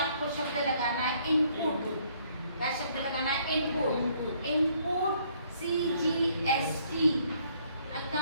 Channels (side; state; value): both; inverted; correlation -0.65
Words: शब्द लगाना है इनपुट। क्या शब्द लगाना है, input. Input CGST